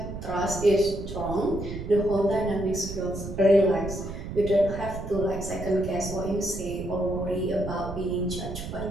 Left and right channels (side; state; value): right; noise; rumble, 8 dB below the sound